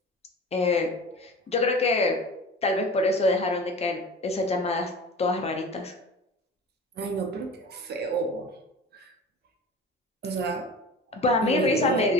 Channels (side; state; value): both; normal; correlation 0.37